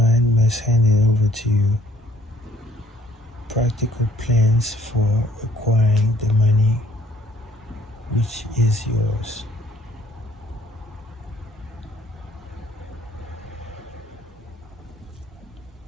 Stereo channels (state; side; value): normal; both; correlation 0.60